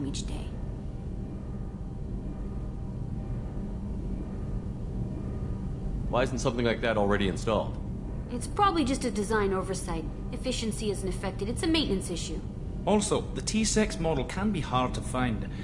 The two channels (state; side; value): identical; both; correlation 1.00